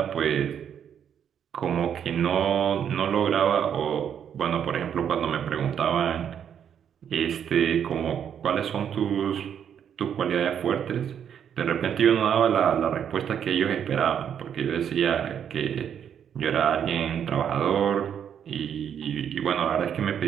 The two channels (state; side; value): quieter; left; 8.6 dB